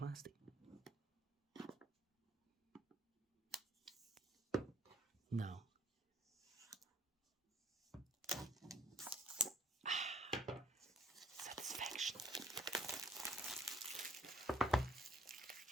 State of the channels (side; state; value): both; normal; correlation 0.59